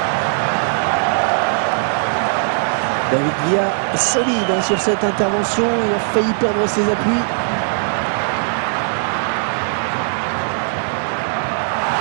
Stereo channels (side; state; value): left; silent; digital silence